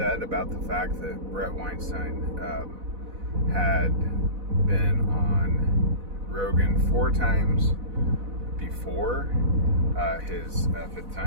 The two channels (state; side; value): late; left; 4.0 ms